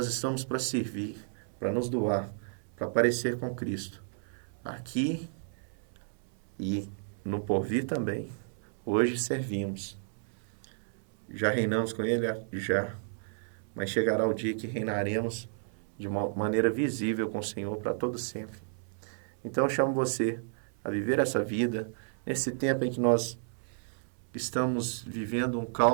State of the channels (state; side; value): silent; left; 56 dB below the other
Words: estamos para servir, para nos doar, para parecer com Cristo. Aqui e no porvir também. Hoje servimos. Já reinamos com Ele? Já. Mas chegará o dia que reinaremos de uma maneira visível com o Senhor para todo sempre. Então eu chamo você a viver essa vida, nesse tempo em que nós estamos vivendo um